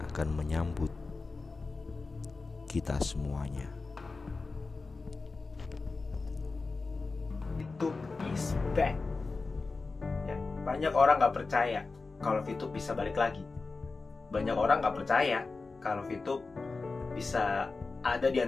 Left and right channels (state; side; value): quieter; right; 3.9 dB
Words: akan menyambut kita semuanya. VTube is back. Ya, banyak orang gak percaya kalau VTube bisa balik lagi. Banyak orang gak percaya kalau VTube bisa ada di